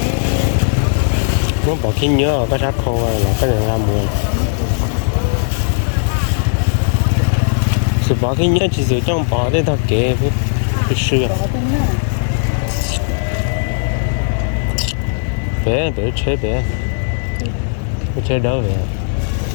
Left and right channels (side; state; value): right; silent; 61 dB below the other